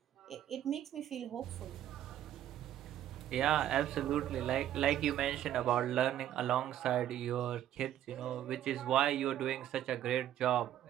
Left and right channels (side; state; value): left; quieter; 11.7 dB